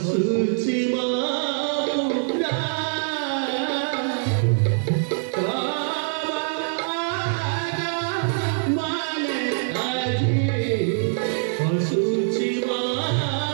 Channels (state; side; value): silent; left; digital silence